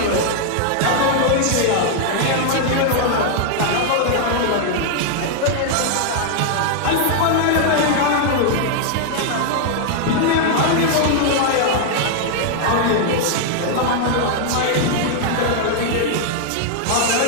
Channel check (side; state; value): both; different; correlation 0.00